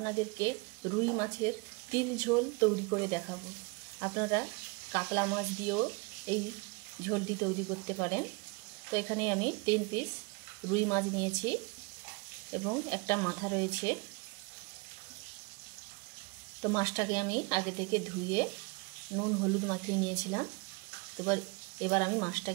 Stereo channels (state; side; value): quieter; left; 29.2 dB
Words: রুই মাছের তিল ঝোল তৈরি করে দেখাবো। আপনারা কাতলা মাছ দিয়েও এই ঝোলটি তৈরি করতে পারেন। তো এখানে আমি 3 পিস রুই মাছ নিয়েছি এবং একটা মাথা রয়েছে। তো মাছটাকে আমি আগে থেকে ধুয়ে নুন হলুদ মাখিয়ে নিয়েছিলাম। তো এবার আমি